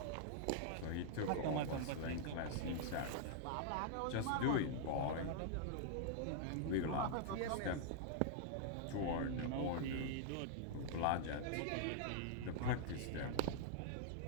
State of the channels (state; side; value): different; both; correlation -0.01